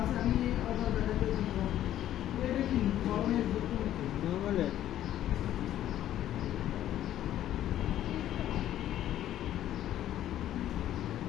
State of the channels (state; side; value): quieter; right; 12.2 dB